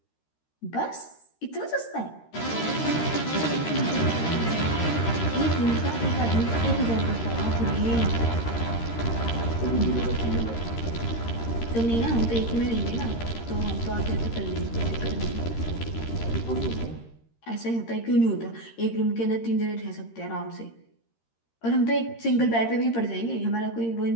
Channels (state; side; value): late; right; 13 ms